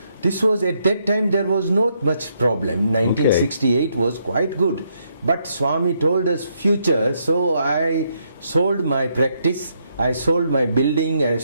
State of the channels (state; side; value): inverted; both; correlation -0.76